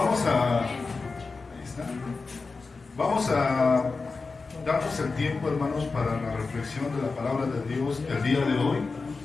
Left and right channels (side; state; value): right; quieter; 4.2 dB